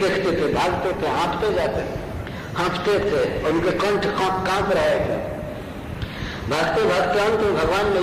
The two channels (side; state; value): both; identical; correlation 1.00